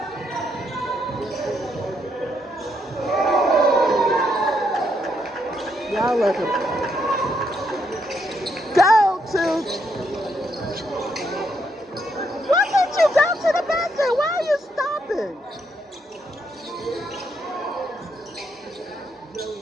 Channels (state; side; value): normal; both; correlation 0.76